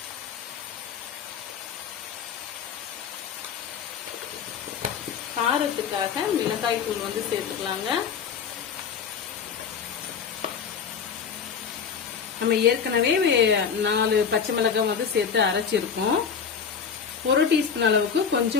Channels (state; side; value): quieter; right; 6.7 dB